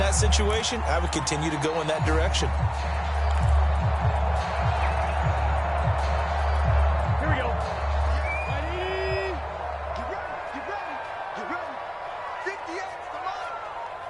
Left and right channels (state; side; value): identical; both; correlation 1.00